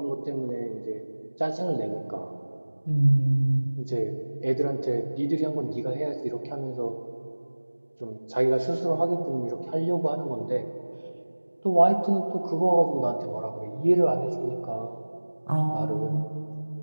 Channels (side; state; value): both; inverted; correlation -1.00